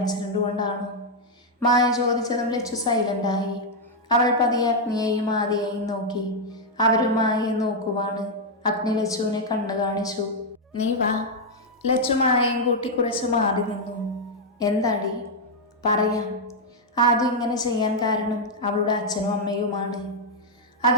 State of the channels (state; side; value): normal; both; correlation -0.01